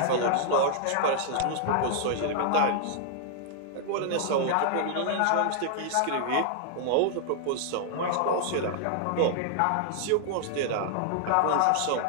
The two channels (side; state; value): both; different; correlation -0.01